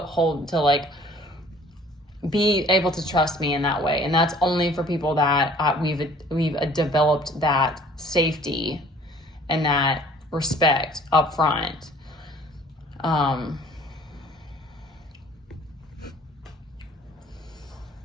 like be able to trust me in that way. And that's only for people that we've developed that safety and that respect up front. All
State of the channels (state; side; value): normal; both; correlation 0.53